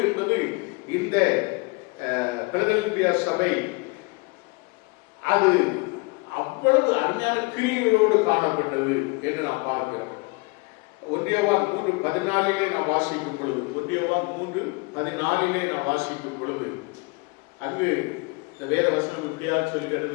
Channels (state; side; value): quieter; right; 28.1 dB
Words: என்பது இந்த பிலதெல்பியா சபை அது அவ்வளவு அருமையான கிரியைகளோடு காணப்பட்டது என்று நாம் பார்க்கிறோம். 1 யோவான் 3:14 நாம் வாசிக்கும் பொழுது 1 யோவான் 3:14 நாம் வாசிக்கும் பொழுது அங்கு இந்த வேத வசனம் இப்படியா